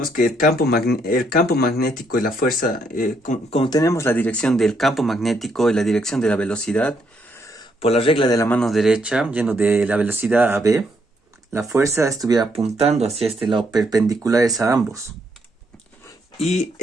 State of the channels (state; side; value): normal; both; correlation 0.74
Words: que el campo magnético y la fuerza, como tenemos la dirección del campo magnético y la dirección de la velocidad, por la regla de la mano derecha, yendo de la velocidad a v, la fuerza estuviera apuntando hacia este lado, perpendiculares a ambos. Y